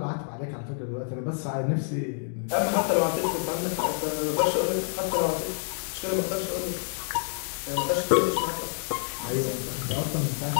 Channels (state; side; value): silent; right; digital silence